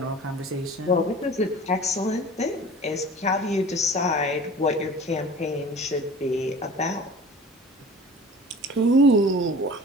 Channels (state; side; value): normal; both; correlation 0.41